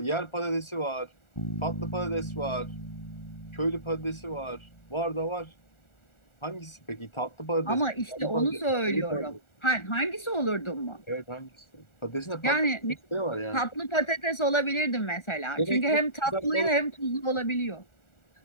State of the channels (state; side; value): late; right; 1.4 ms